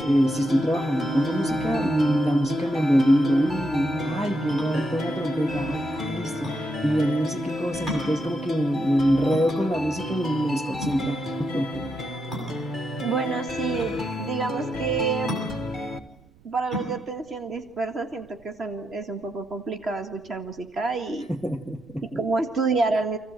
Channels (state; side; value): noise; right; rumble, 28 dB below the sound